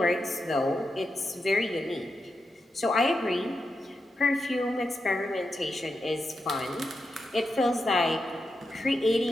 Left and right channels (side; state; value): both; normal; correlation 0.87